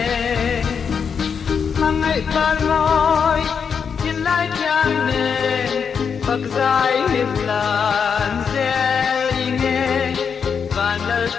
mang ngày ban môi thiên lai thiang nề Phật giải hiệp lan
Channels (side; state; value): right; quieter; 6.6 dB